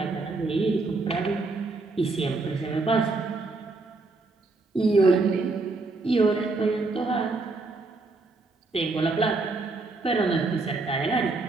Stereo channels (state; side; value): quieter; left; 3.5 dB